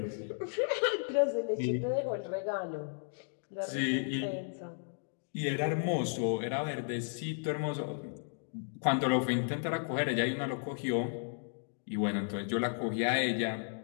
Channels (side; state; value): right; silent; digital silence